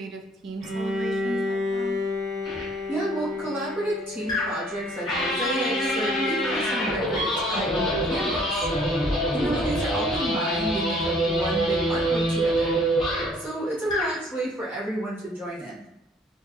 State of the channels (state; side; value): normal; both; correlation 0.59